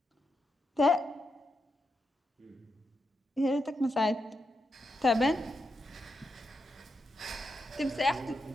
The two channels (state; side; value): normal; both; correlation 0.85